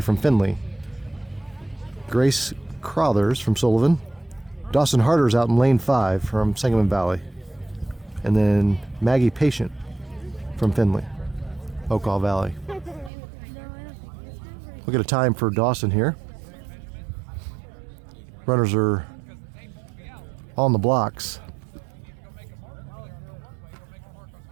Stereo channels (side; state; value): left; drops out; at 13.1 s